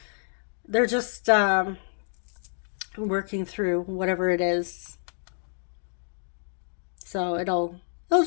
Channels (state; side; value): silent; right; digital silence